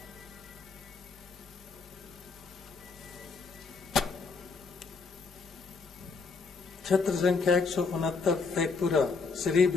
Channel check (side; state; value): right; quieter; 4.5 dB